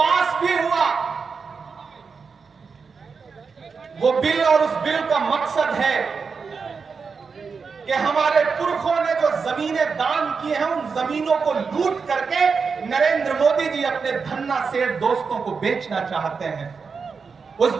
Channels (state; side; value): quieter; left; 5.3 dB